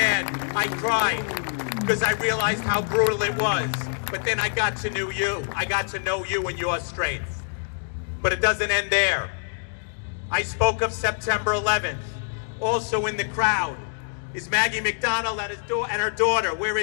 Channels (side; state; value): right; silent; digital silence